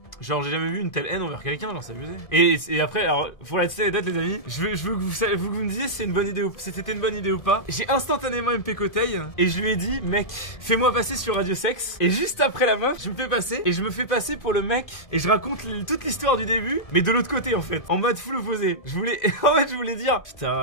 Genre, j'ai jamais vu une telle haine envers quelqu'un, genre, c'est abusé. Et après, alors, pour la petite anecdote, les amis, je veux que vous me disiez si c'était une bonne idée ou pas. J'ai instantanément MP Coteil et je lui ai dit, mec, fais-moi passer sur Radio Sex. Et juste après la meuf, je me fais passer et je me fais passer pour le mec et je raconte toute l'histoire du début, mais de l'autre côté, en fait, en mode full opposé. En fait, je voulais dire,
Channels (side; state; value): right; late; 2.5 ms